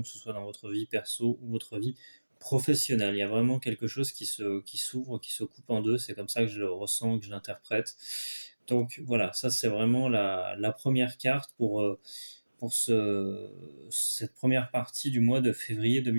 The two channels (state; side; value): inverted; both; correlation -1.00